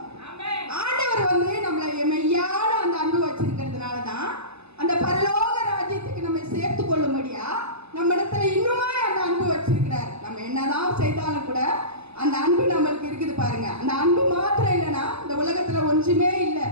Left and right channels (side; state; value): left; late; 0.79 ms